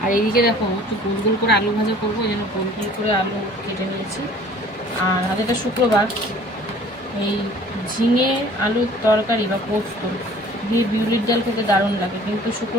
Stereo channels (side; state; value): both; normal; correlation 0.51